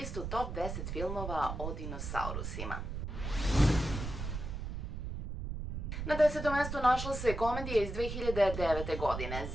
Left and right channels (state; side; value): noise; right; rumble, 5 dB below the sound